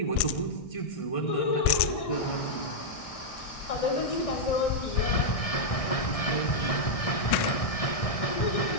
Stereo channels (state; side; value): late; right; 1.6 ms